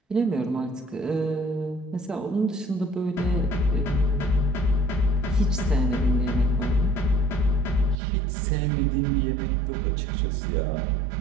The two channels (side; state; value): left; drops out; at 8.0 s